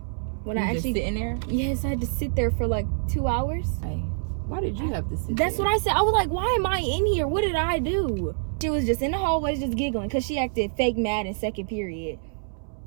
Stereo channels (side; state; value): left; silent; 61 dB below the other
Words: When you I actually just sitting there? Yes, I had to sit there for like 2 hours. Hey, why did you have to sit That's there? what I said. I was like, why am I in here? What did I do? She was just in the hallways just giggling because she acted fake mad in second period.